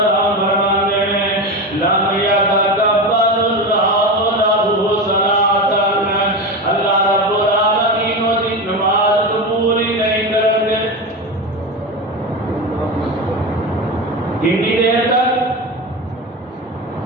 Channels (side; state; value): both; normal; correlation 0.21